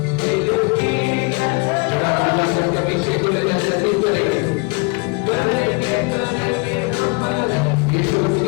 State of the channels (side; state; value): right; quieter; 29.9 dB